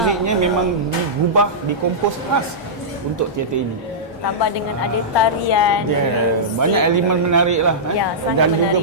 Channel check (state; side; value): normal; both; correlation -0.14